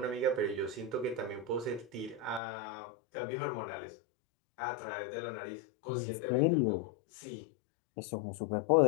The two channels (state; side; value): drops out; right; at 2.4 s